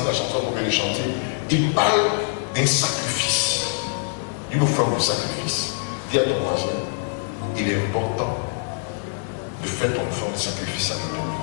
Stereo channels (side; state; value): right; silent; digital silence